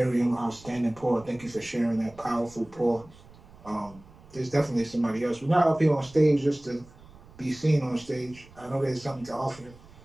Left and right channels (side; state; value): right; noise; rumble, 23 dB below the sound